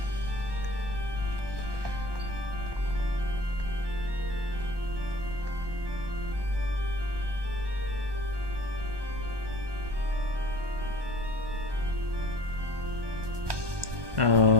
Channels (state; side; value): late; left; 1.2 ms